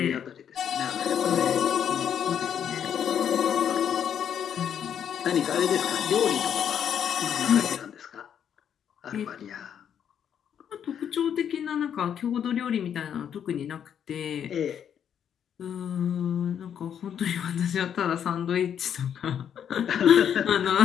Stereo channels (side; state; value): right; quieter; 8.7 dB